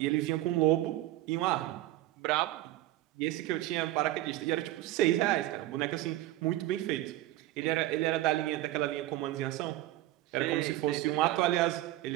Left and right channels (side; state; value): left; quieter; 15.5 dB